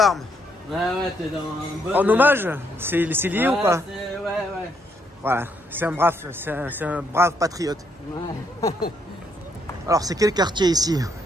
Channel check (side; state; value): both; normal; correlation 0.73